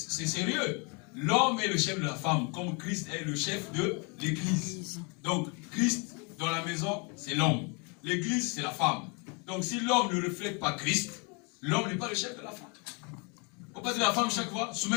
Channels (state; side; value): quieter; right; 32.8 dB